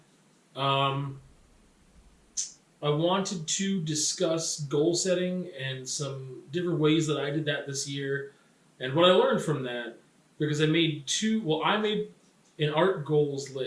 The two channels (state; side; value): identical; both; correlation 1.00